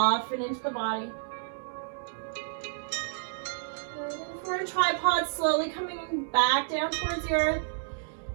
into the body. And for a tripod, slowly coming back down towards the earth.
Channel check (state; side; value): silent; left; digital silence